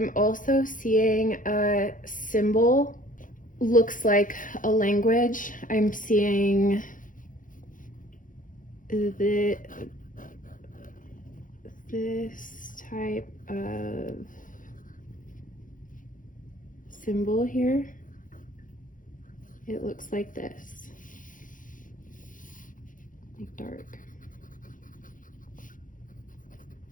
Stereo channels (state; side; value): late; right; 0.39 ms